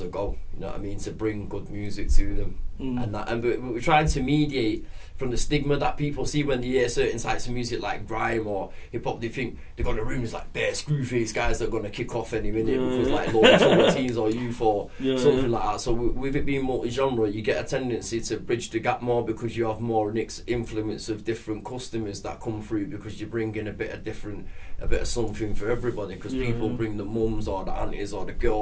a go, you know what I mean, to bring good music to them. And we're trying to mediate from the stigma that people see when they hear certain types of music like grime or hip hop. They think they got the rooms like bare screwface guys that are gonna kick off any minute because like low teens or youth or something like that. So with it being multi-genre, you get a tendency to bridge the gap more because you have more influence of different customers that come through, because you bring in a bit of something for everybody, because people bring the mums or the aunties or the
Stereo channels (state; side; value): identical; both; correlation 1.00